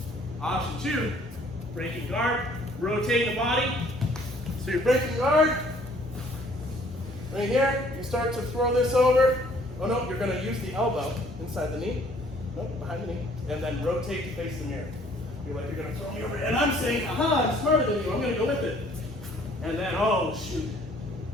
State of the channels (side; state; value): both; normal; correlation 0.59